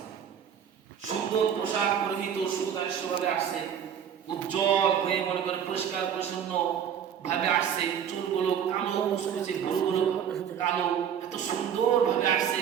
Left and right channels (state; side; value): quieter; left; 8.6 dB